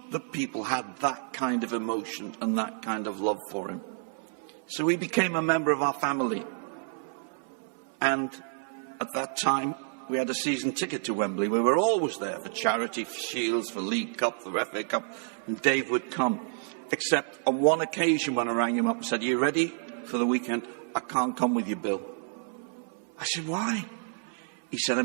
that people had that kind of emotion and that kind of love for him. So he became a member of our family. And at that time, we had a season ticket to Wembley. We were always there for charity, for Shields, for League Cup, for FA Cup. And Dave would come. Except on one occasion when I rang him up and said, are you ready for the weekend? I can't come with you, Bill. I said, why? He said,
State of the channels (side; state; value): left; silent; 58 dB below the other